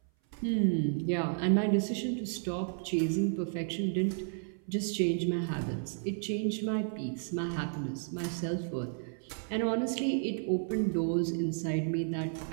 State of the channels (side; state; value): left; silent; 56 dB below the other